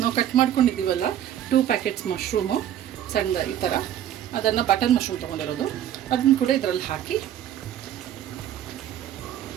ಕಟ್ ಮಾಡ್ಕೊಂಡಿದ್ದೀವಲ್ಲ 2 ಪ್ಯಾಕೆಟ್ಸ್ ಮಶ್ರೂಮು ಸಣ್ಣ ಈ ಥರ, ಅದನ್ನು ಬಟರ್ ಮಶ್ರೂಮ್ ತೊಗೊಂಡಿರೋದು, ಅದನ್ನು ಕೂಡ ಇದರಲ್ಲಿ ಹಾಕಿ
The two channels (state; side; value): quieter; left; 11.0 dB